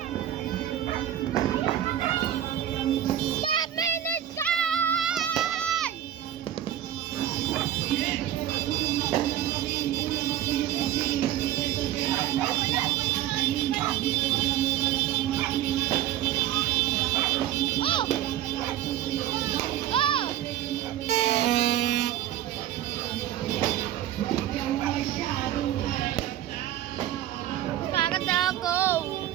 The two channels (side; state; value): left; quieter; 12.1 dB